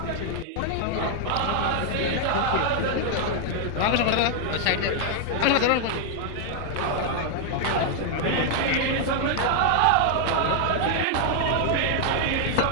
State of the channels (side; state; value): both; different; correlation 0.00